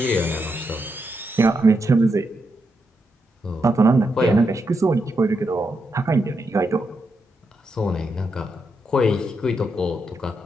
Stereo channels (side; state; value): both; normal; correlation 0.83